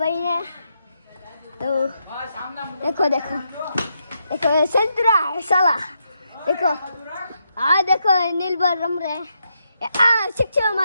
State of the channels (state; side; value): inverted; both; correlation -0.81